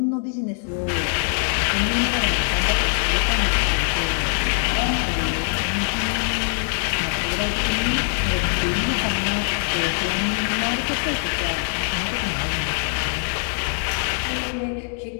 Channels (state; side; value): silent; right; 64 dB below the other